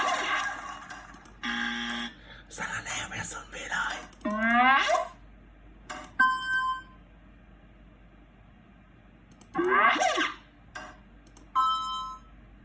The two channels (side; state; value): both; identical; correlation 1.00